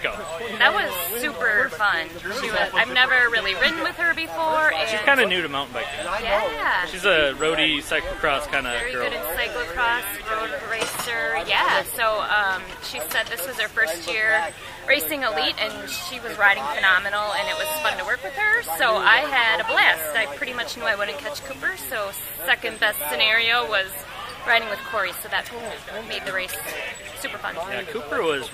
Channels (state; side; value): identical; both; correlation 1.00